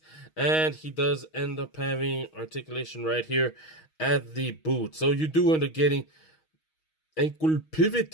And he does end up having articulation right here at the boot. So you do end up getting ankle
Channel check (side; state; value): right; late; 6.3 ms